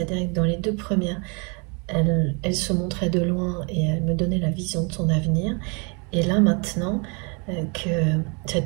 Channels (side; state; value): left; quieter; 33.5 dB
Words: que dans les 2 premières, elle se montrait de loin et elle me donnait la vision de son avenir. Et là maintenant, que